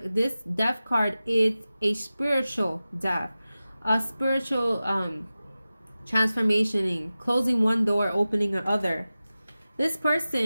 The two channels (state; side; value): inverted; both; correlation -0.95